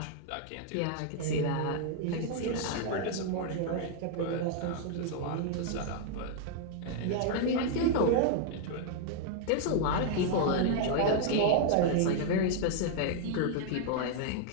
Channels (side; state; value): both; different; correlation 0.00